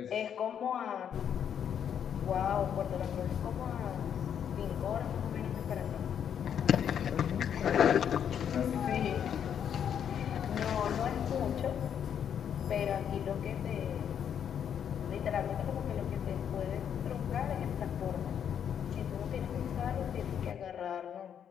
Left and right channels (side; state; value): right; quieter; 8.6 dB